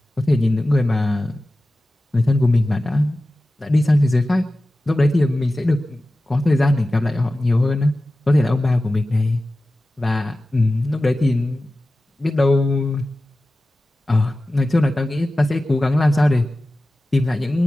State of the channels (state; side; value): normal; both; correlation 0.95